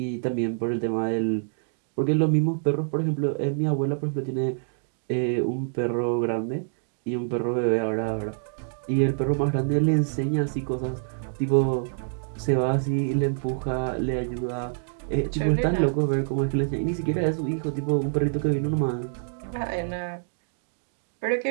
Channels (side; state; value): left; silent; digital silence